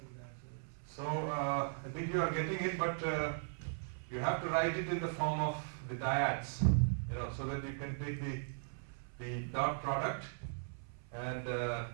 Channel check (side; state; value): left; silent; 52 dB below the other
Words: So I think you are getting it, but you have to write it in the form of the dyads, so that you can take the dot product and